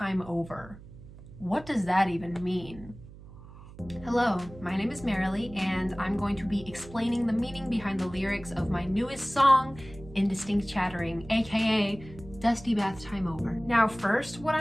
Over. What does that even mean? Hello, my name is Marilee, and I'm going to be explaining the meaning behind the lyrics of my newest song, Indistinct Chattering, aka Dusty Bathtime Over. Now first, what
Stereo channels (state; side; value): noise; right; hum, 18 dB below the sound